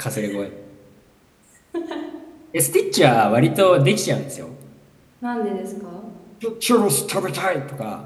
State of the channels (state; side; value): identical; both; correlation 1.00